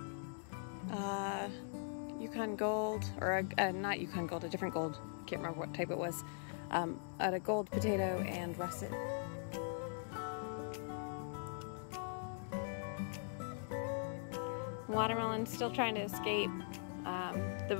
Yukon Gold, or not Yukon Gold, a different gold, I can't remember what type it was, a gold potato and russet. Watermelon's still trying to escape.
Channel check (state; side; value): silent; right; digital silence